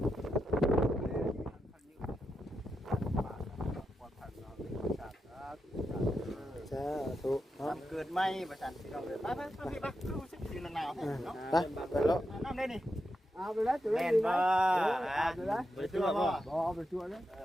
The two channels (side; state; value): both; normal; correlation 0.86